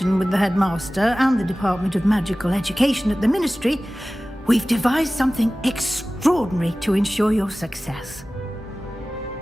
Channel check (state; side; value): normal; both; correlation 0.97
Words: with the headmaster and the Department of Magical Education at the Ministry, we've devised something extraordinary to ensure your success.